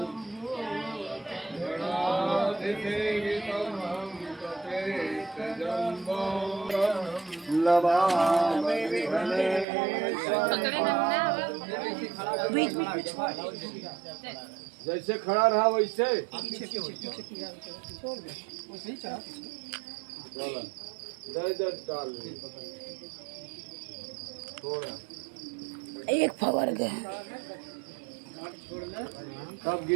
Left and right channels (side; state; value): left; drops out; at 9.7 s